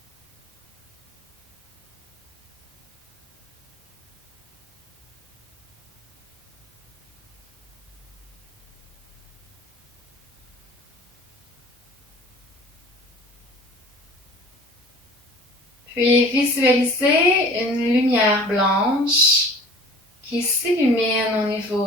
Puis visualisez une lumière blanche qui s'illumine au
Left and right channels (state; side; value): normal; both; correlation 0.45